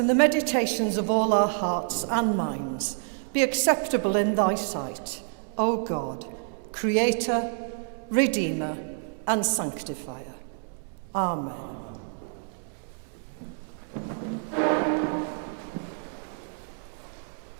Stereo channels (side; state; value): left; silent; 59 dB below the other